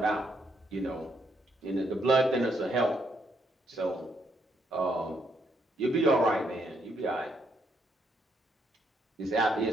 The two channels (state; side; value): normal; both; correlation 0.74